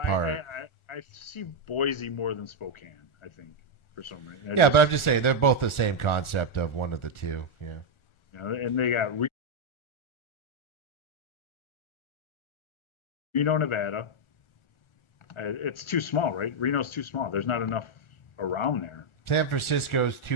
part. I see Boise more than Spokane. I think for some reason. But I'm just saying they're both the same concept of one of the 2. Yeah. And they got Reno, Nevada. It's too small, right? Reno's too small. There's not enough around there. San Francisco's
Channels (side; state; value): right; late; 1.4 ms